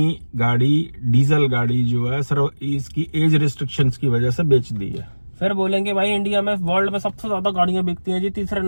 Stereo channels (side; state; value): both; inverted; correlation -1.00